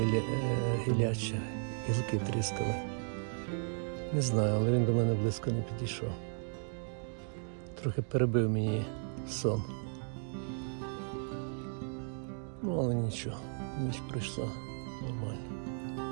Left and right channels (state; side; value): silent; left; 54 dB below the other